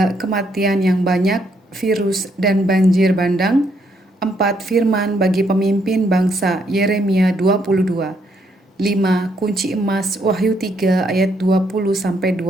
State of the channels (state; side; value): normal; both; correlation 0.73